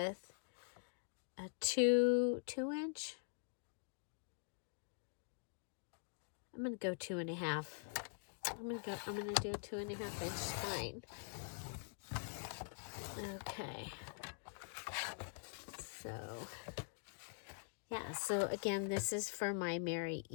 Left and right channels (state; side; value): silent; right; digital silence